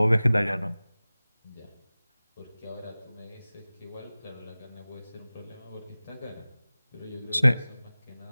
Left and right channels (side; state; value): both; inverted; correlation -0.98